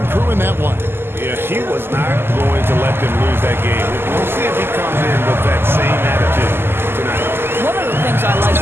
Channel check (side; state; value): left; late; 0.11 ms